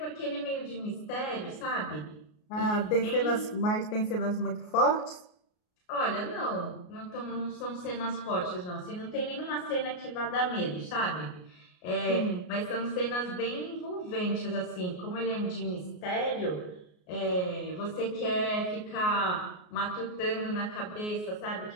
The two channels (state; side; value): late; right; 33 ms